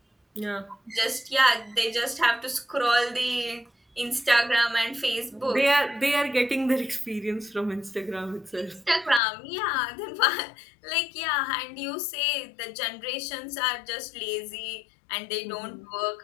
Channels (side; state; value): right; drops out; at 9.2 s